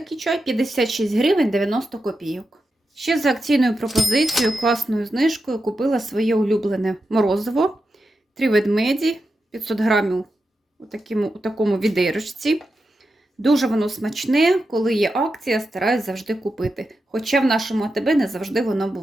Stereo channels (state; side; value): normal; both; correlation 0.89